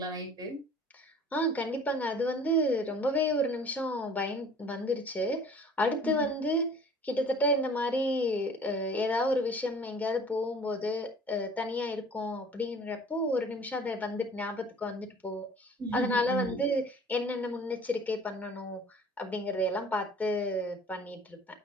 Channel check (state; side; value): normal; both; correlation 0.49